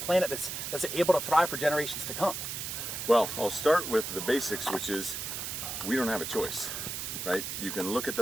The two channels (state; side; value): noise; right; hiss, 5 dB below the sound